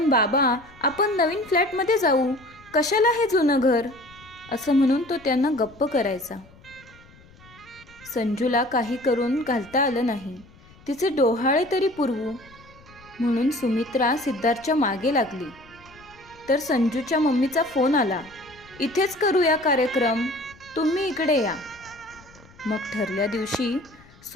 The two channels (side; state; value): left; noise; rumble, 25 dB below the sound